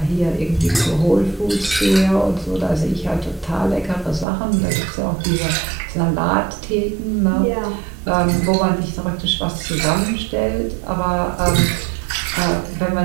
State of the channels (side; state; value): left; drops out; at 4.2 s